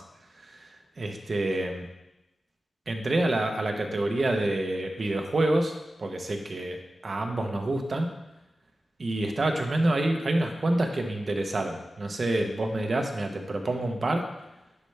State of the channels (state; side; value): normal; both; correlation 0.94